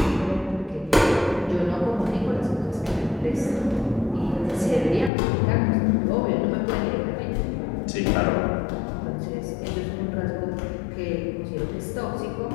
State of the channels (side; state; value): right; drops out; at 5.1 s